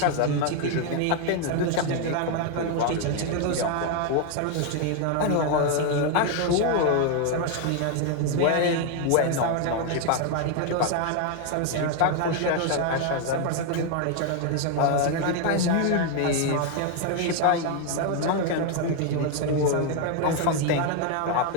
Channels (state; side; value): different; both; correlation 0.01